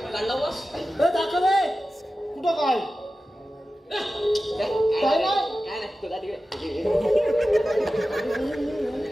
काढला वास दाखव कुठं काय काय नाही तुला तिकडे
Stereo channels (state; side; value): normal; both; correlation 0.94